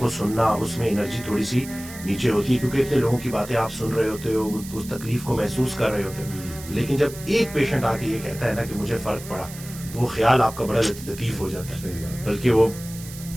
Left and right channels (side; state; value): right; noise; hiss, 15 dB below the sound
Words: سننا, اس میں انرجی تھوڑی سی نیچے ہوتی ہے, کیونکہ اتنے لوگوں کی باتیں آپ سن رہے ہوتے ہو, اس تکلیف کو محسوس کر رہے ہوتے ہو. لیکن جب ایک پیشنٹ آ کے یہ کہتا ہے نا کہ مجھے فرق پڑا, تو وہ خیال آپ کا بڑا لطیف ہو جاتا ہے. بلکہ وہ